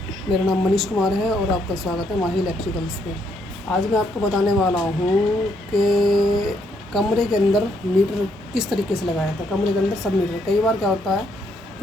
मेरा नाम मनीष कुमार है और आपका स्वागत है माही इलेक्ट्रिकल्स पे। आज मैं आपको बताने वाला हूँ कि कमरे के अंदर मीटर किस तरीके से लगाया था। कमरे के अंदर सब मीटर, कई बार क्या होता है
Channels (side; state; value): both; normal; correlation 0.73